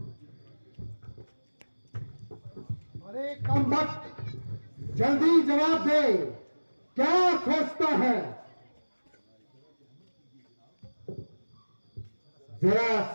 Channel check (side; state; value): both; inverted; correlation -1.00